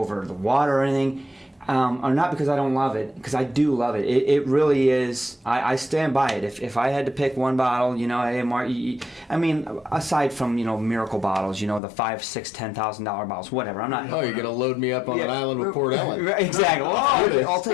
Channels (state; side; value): drops out; right; at 11.8 s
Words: the water or anything. Or not because I don't love it, because I do love it. It really is. I stand by it. If I had to pick one bottle, you know, I mean, aside from, you know, miracle bottles, you know, the $5,000, $6,000, $10,000 bottles, whatever. I'm not. Oh, you're going to load me up on an island with Port Ellen. Right, exactly. Well, I'll